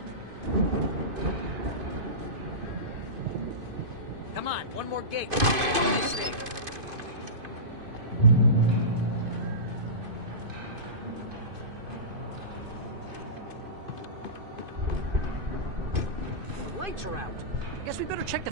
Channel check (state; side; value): late; left; 2.5 ms